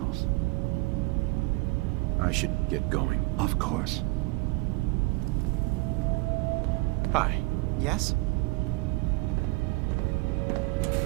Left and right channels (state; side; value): quieter; left; 24.7 dB